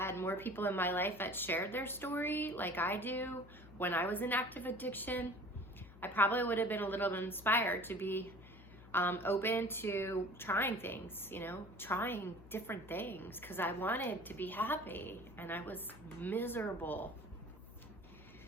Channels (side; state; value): left; noise; hum, 19 dB below the sound